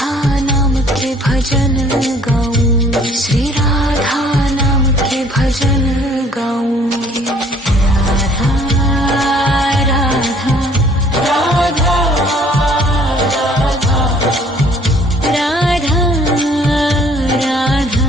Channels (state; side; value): normal; both; correlation 0.57